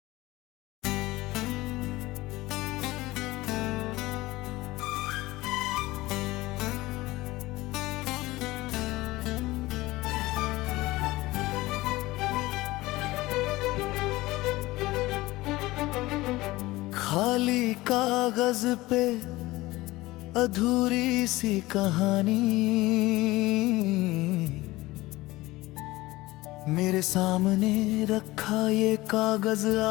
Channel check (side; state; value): right; quieter; 19.2 dB